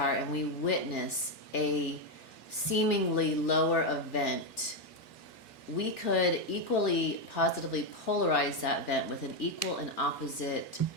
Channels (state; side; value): late; right; 2.3 ms